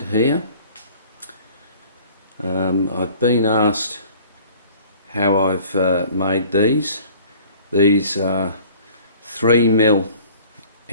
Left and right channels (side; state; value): both; inverted; correlation -0.50